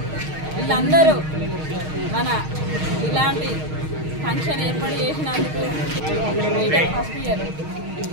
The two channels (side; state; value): left; late; 6.4 ms